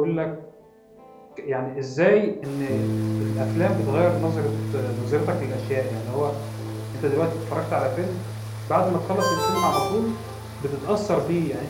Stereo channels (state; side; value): identical; both; correlation 1.00